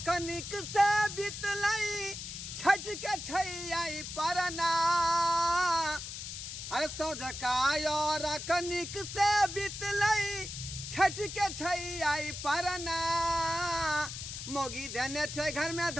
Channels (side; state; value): left; noise; hiss, 8 dB below the sound